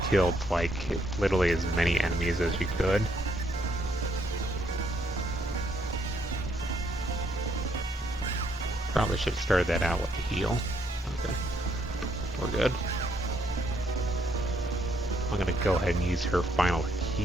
killed like literally as many enemies as you could. Probably should have started that out with the heal. Okay, we're good. I'm gonna go ahead and use her final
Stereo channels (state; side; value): normal; both; correlation 0.72